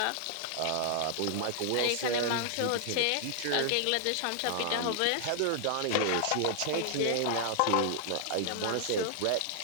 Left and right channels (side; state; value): both; different; correlation 0.00